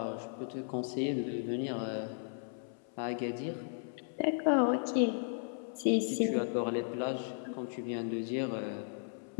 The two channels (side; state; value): right; silent; 54 dB below the other